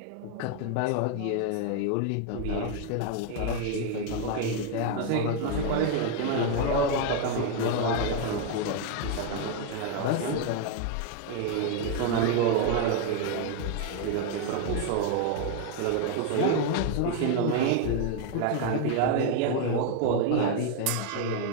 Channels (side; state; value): both; different; correlation 0.01